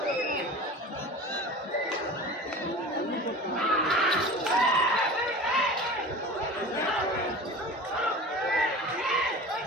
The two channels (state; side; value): normal; both; correlation 0.36